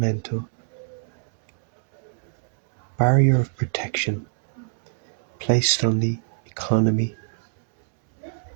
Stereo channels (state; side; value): silent; left; digital silence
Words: barrier of protection placed on the economy,